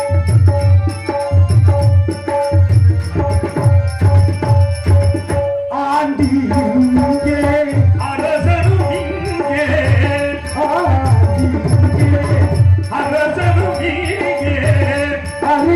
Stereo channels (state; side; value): identical; both; correlation 1.00